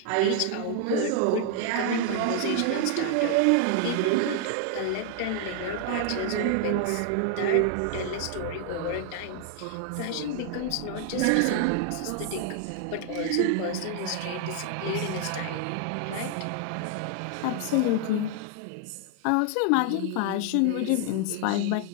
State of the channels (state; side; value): different; both; correlation 0.00